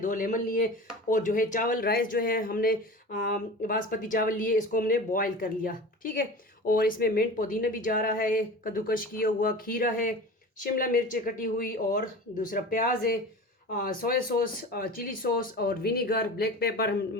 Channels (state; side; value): normal; both; correlation 0.34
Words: लेमन लिए। और जो है चावल राइस जो है हमने बासमती चावल लिए, इसको हमने बॉयल कर लिया। ठीक है, और इसमें मिंट पुदीना भी जा रहा है, कद्दूकश किया हुआ खीरा है, शिमला मिर्च कटी हुई, और दूसरा प्याज है, सोया सॉस, चिली सॉस और विनीगर, ब्लैक पेपर,